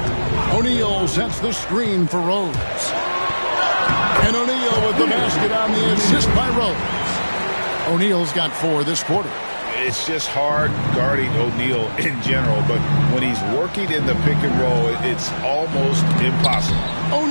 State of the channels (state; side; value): inverted; both; correlation -1.00